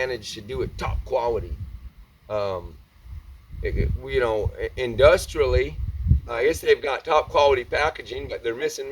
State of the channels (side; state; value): both; identical; correlation 1.00